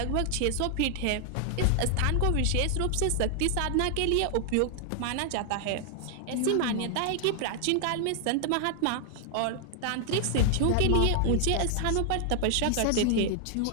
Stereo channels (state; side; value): different; both; correlation 0.00